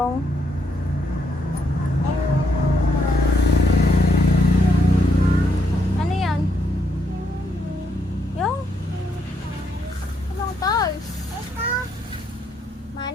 ano yan? Yung anong toys?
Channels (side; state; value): both; normal; correlation 0.75